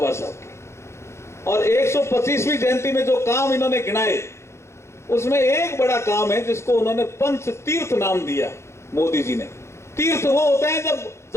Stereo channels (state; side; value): late; right; 0.13 ms